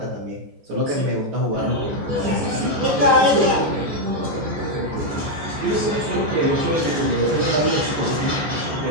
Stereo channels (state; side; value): late; left; 14 ms